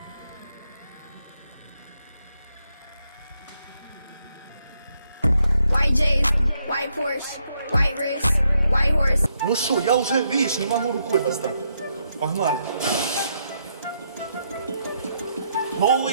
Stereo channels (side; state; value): both; inverted; correlation -0.77